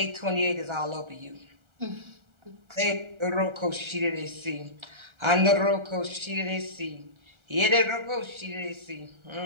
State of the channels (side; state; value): left; late; 1.4 ms